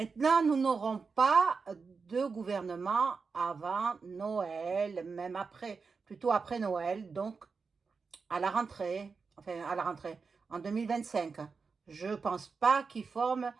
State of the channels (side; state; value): left; quieter; 4.9 dB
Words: nous n'aurons pas de gouvernement avant Noël, même après, plutôt après Noël, donc à la rentrée, enfin à la rentrée, en 2025. Je pense pas qu'il forme